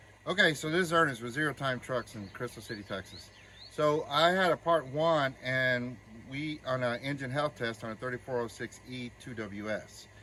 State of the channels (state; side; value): identical; both; correlation 1.00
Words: Okay, so this is Ernest with Zero Time Trucks in Crystal City, Texas. So I had a part one, and we on an engine health test on a 3406E 2WS.